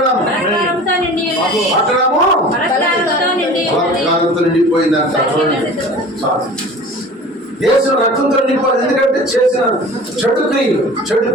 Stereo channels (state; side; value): normal; both; correlation 0.41